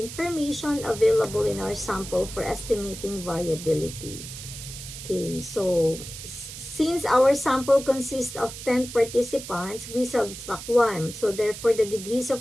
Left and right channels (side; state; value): right; noise; hiss, 11 dB below the sound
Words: available in our sample for estimating variability. Okay, so since our sample consists of 10 participants, we subtract 1. So therefore, the degrees